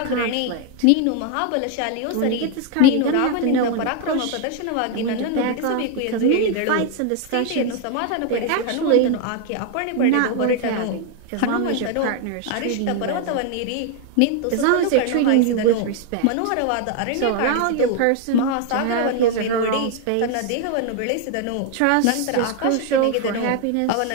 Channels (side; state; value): both; different; correlation 0.00